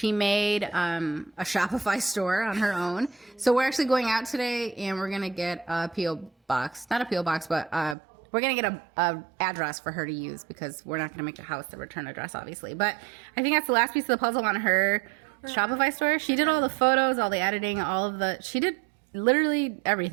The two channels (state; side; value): drops out; left; at 8.0 s